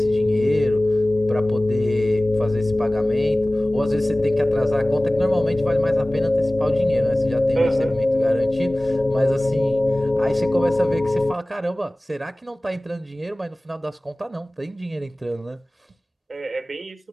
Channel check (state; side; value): normal; both; correlation 0.98